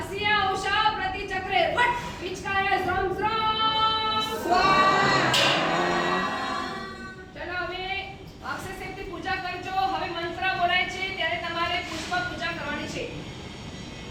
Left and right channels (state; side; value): identical; both; correlation 1.00